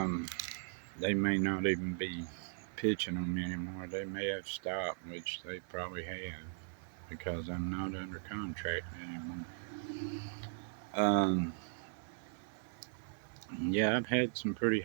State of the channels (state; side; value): silent; left; 52 dB below the other